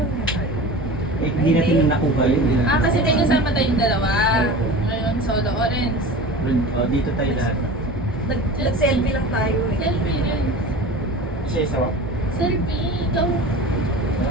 na tayo. Eh, hindi natin nakuha yun. Ah, kasi may kasama tayong dalawa. Oo. Ngayon, solo orange. O, dito tayo lahat. Nag-selfie lang tayo eh. Selfie rin. Isa-isa ba? Selfie, ikaw.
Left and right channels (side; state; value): both; normal; correlation 0.34